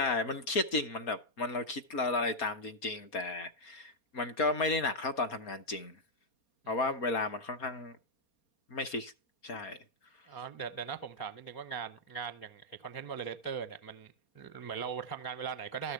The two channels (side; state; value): right; late; 4.3 ms